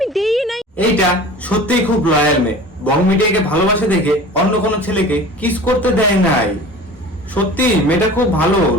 দেই নাই। এইটা সত্যিই খুব লয়াল মেয়ে, বং মিডিয়াকে ভালোবাসে দেখে অন্য কোনো ছেলেকে কিস করতে দেয় নাই। সত্যি মেয়েটা খুব ভালো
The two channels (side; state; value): both; normal; correlation 0.40